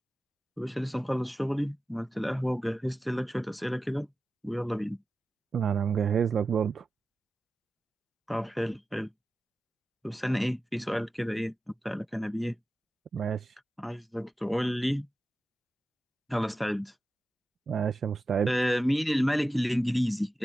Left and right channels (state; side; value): normal; both; correlation 0.93